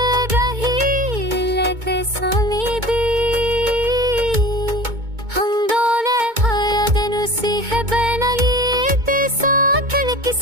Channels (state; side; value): late; left; 2.2 ms